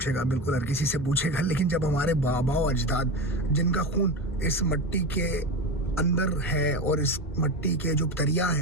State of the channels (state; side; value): normal; both; correlation 0.22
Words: बिल्कुल हर किसी से पूछेगा, लेकिन जब हमारे बाबा और अजदाद, जिनका खून इस मिट्टी के अंदर है, और इस मिट्टी के जो